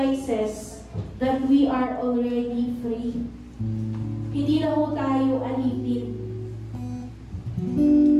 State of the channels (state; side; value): identical; both; correlation 1.00